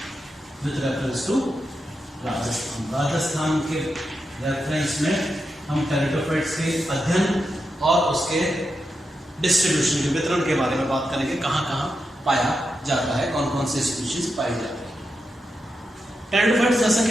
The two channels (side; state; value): both; normal; correlation 0.87